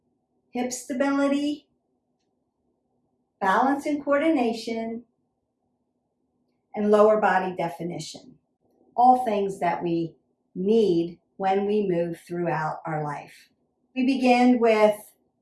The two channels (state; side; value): identical; both; correlation 1.00